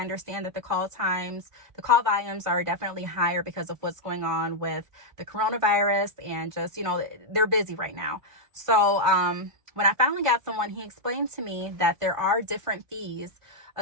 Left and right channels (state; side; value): late; left; 1.5 ms